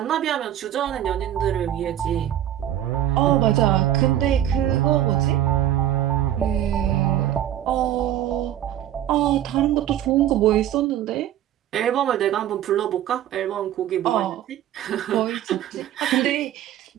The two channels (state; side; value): quieter; left; 11.7 dB